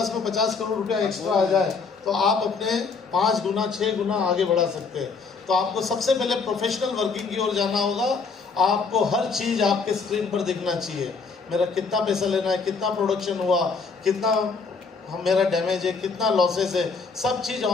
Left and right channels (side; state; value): right; quieter; 4.8 dB